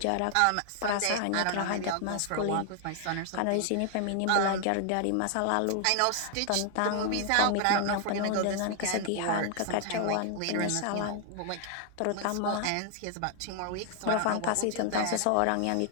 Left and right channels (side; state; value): both; different; correlation 0.00